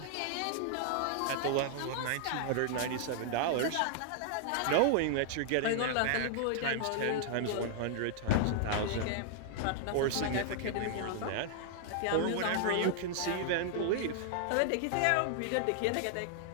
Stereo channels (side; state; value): both; different; correlation -0.01